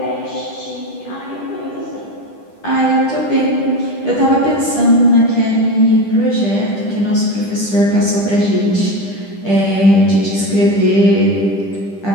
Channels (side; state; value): right; late; 10 ms